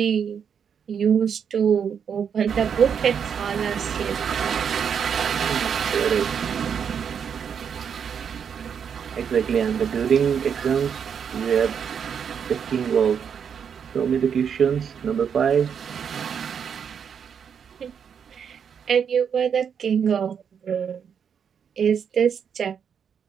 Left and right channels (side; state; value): left; quieter; 7.4 dB